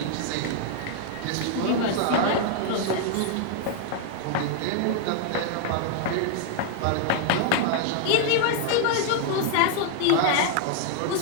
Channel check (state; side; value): different; both; correlation 0.00